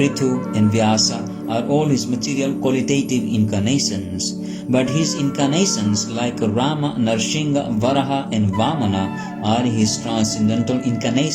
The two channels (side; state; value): both; identical; correlation 1.00